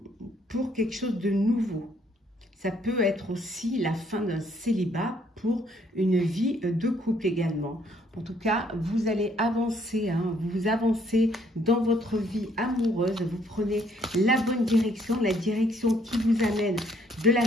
pour quelque chose de nouveau. Ça peut être aussi la fin d'un célibat pour une vie de couple également. En tout cas, vous allez avancer, vous avancez dans votre vie amoureuse, vous prenez la bonne direction, la direction qui vous amène de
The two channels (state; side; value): normal; both; correlation 0.66